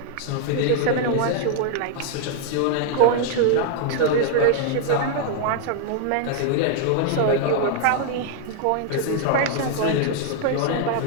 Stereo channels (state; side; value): different; both; correlation 0.00